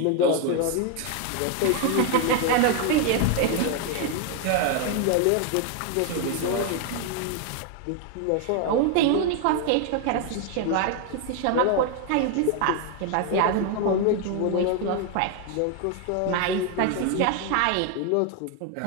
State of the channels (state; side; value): different; both; correlation 0.01